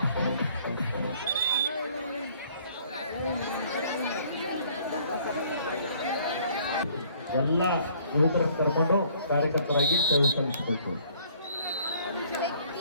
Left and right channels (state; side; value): inverted; both; correlation -0.60